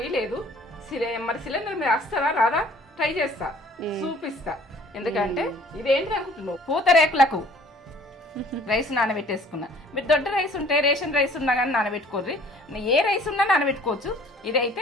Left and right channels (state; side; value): normal; both; correlation 0.53